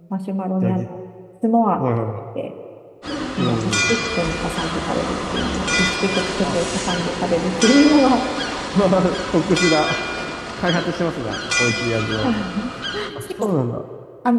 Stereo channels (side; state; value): both; identical; correlation 1.00